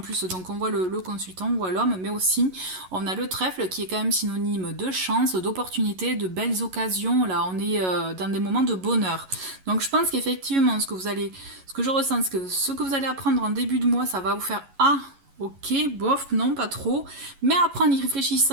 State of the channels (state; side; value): late; left; 11 ms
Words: donc on voit le consultant, on voit l'homme, mais aussi on a le trèfle qui est quand même synonyme de chance, d'opportunité, de belles occasions. Là, on est dans des moments de bonheur. Donc je pense qu'effectivement, ce que je ressens, ce que vous allez apprendre en début de mois, ça va vous faire ok, bof, non, pas trop. Mais après, en y